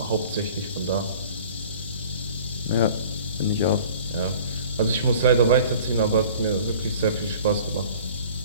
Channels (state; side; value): inverted; both; correlation -0.48